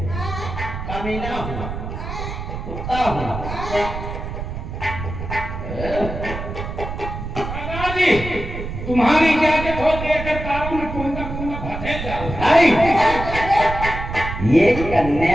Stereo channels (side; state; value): right; noise; rumble, 7 dB below the sound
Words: हाँ, कमीना हूँ, हाँ, कुत्ता हूँ। हाँ। सरदार जी, तुम्हारी इजाजत हो देकर तारों में कुंदा कुंदा भटे जाओ। नहीं, ये